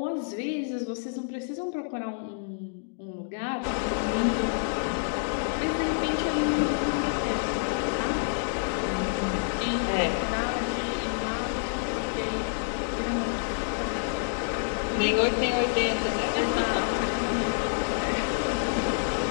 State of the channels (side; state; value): right; silent; digital silence